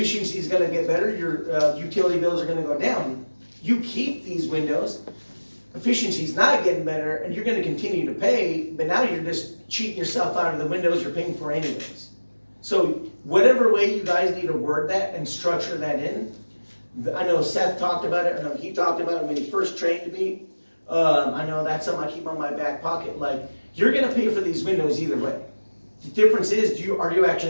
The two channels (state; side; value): inverted; both; correlation -1.00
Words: is gonna get better, your utility bills are gonna go down. You keep these windows, efficiency's not getting better, and you're gonna continue to pay, but now you're just cheating yourself out of the windows you're paying for anyways. So whatever way you guys need to word that and structure that in, I know Seth talked about it, I know he talked about it when he first trained me. I know that's something I keep on my back pocket, like, you're gonna pay for these windows either way. The difference is, are you